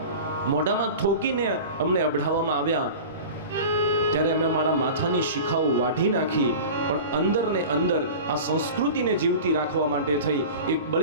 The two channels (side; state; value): both; inverted; correlation -0.35